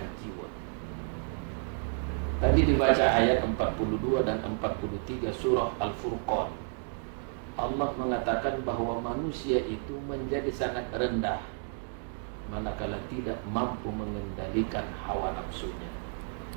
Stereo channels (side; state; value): left; silent; 57 dB below the other